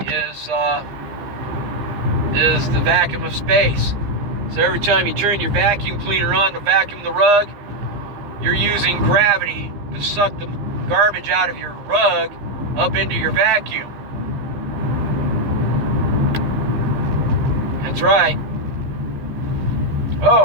is the vacuum of space. So every time you turn your vacuum cleaner on to vacuum the rug, you're using gravity to suck the garbage out of your rug up into your vacuum. That's right.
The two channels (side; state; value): left; late; 15 ms